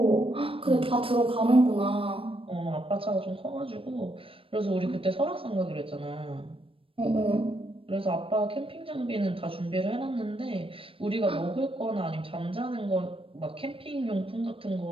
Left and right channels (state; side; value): late; left; 0.26 ms